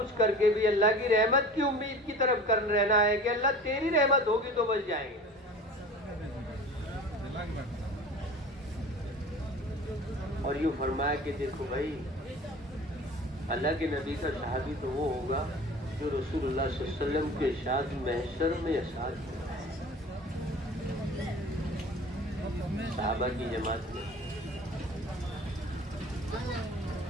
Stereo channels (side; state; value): both; normal; correlation 0.40